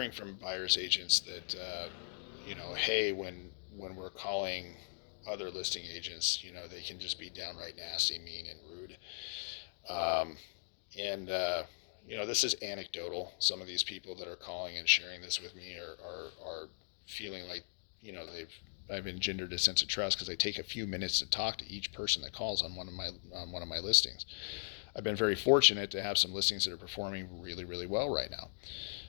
from buyers agents that hey, when we're calling other listing agents, they can just be downright nasty, mean, and rude. Um, and this is anecdotal. Some of these people that are calling and sharing this with me are feeling like they've I've engendered a sense of trust because I take a few minutes to talk to each person that calls on one of my listings. I've been very fortunate to have some listings that are performing really, really well right now.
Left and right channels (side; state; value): right; silent; digital silence